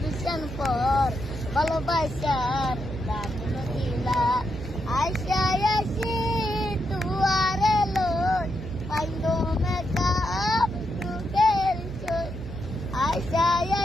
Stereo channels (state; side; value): noise; right; hum, 10 dB below the sound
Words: পর ভালোবাসার দাম নদিলা আশা আসি তুয়ারে লোট পাইলো মেকা তুকের চোট আশা